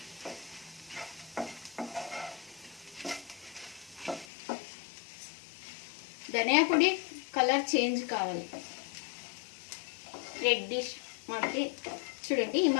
ధనియా పొడి కలర్ చేంజ్ కావాలి. రెడ్డిష్ మాదిరి చూడండి, ఈ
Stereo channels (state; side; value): drops out; right; at 4.2 s